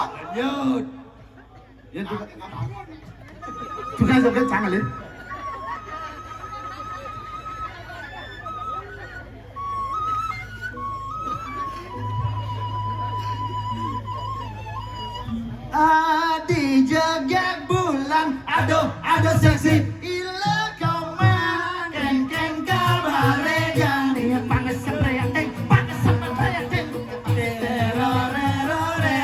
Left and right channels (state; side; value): identical; both; correlation 1.00